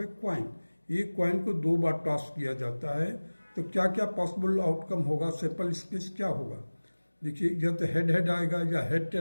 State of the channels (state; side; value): inverted; both; correlation -1.00